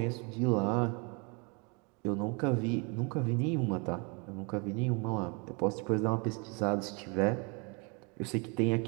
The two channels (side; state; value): left; quieter; 32.6 dB